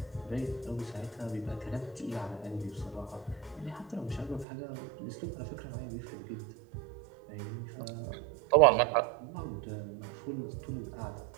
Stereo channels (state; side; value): drops out; left; at 4.5 s